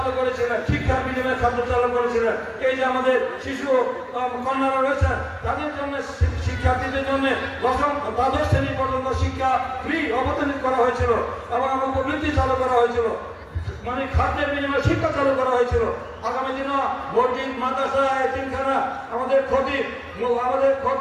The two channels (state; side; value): identical; both; correlation 1.00